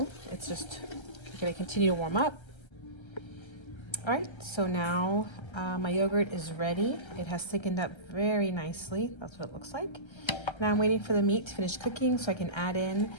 it's just going to continue to warm up. All right, so now my yogurt is ready. It has thickened up very nicely. That's what it looks like. Now I'm waiting for the meat to finish cooking so I can add in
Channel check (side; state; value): right; late; 1.3 ms